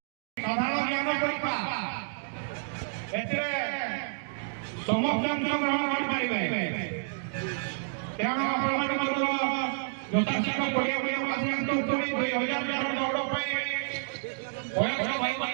ସାଧାରଣ ଜ୍ଞାନ ପରୀକ୍ଷା ଏଥିରେ ସମସ୍ତେ ଅଂଶଗ୍ରହଣ କରିପାରିବେ। ତେଣୁ ଆପଣମାନେ ମଧ୍ୟ ଯଥାଶୀଘ୍ର ପଡ଼ିଆ ପଡ଼ିଆକୁ ଆସିଯାନ୍ତୁ। ପୁଣି 2000 ଦୌଡ଼ ପାଇଁ ବୟସ୍କ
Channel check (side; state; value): left; silent; digital silence